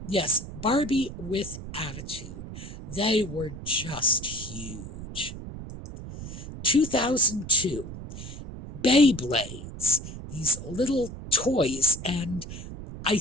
Yes, Barbie with attitude. They were just huge. 2002, Beyblades. These little toys, and I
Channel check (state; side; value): noise; right; rumble, 11 dB below the sound